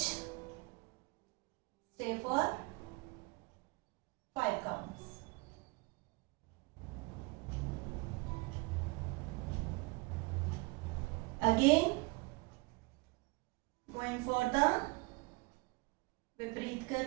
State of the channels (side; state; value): left; quieter; 27.3 dB